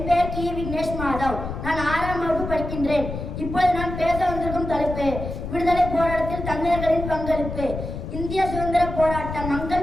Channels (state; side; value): noise; left; rumble, 7 dB below the sound